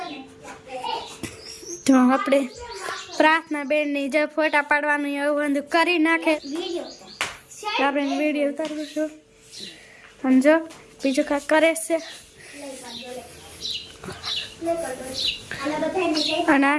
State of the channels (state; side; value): identical; both; correlation 1.00